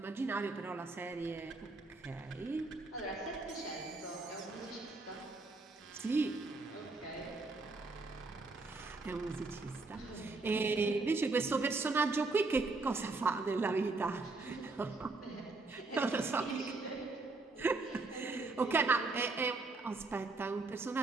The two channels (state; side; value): quieter; left; 3.5 dB